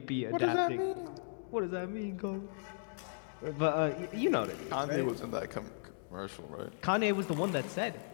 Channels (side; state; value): right; silent; digital silence